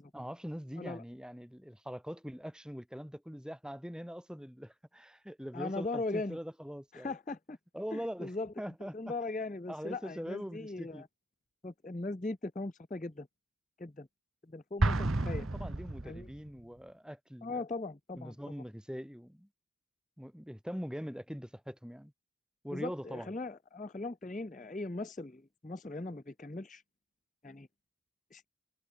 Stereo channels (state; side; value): normal; both; correlation 0.76